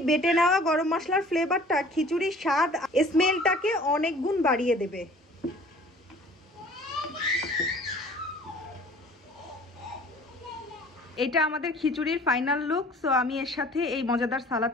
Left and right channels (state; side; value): normal; both; correlation 0.50